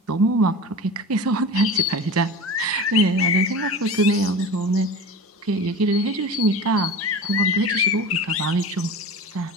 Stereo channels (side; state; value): both; normal; correlation 0.33